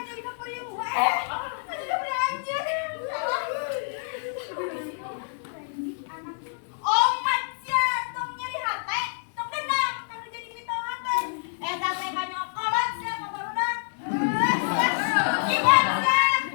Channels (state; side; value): silent; right; digital silence